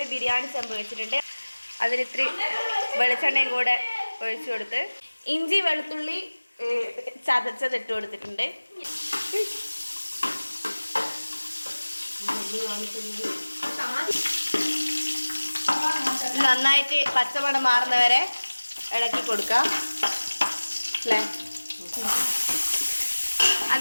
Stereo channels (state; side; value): inverted; both; correlation -1.00